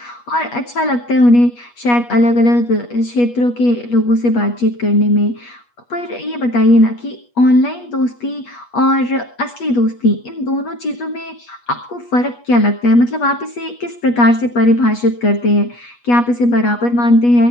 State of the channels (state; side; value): late; right; 8.3 ms